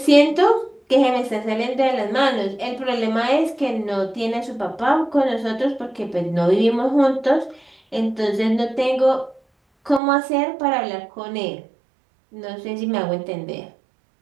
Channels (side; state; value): left; drops out; at 10.0 s